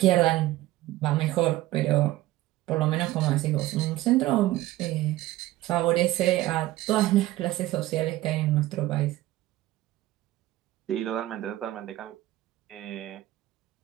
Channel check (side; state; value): left; quieter; 16.3 dB